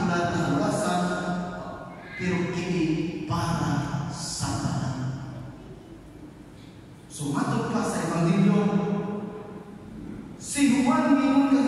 na luwasan pero kini para sa tanan. So matod pa sa Ebanghelyo, si Juan mingon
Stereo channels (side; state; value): both; identical; correlation 1.00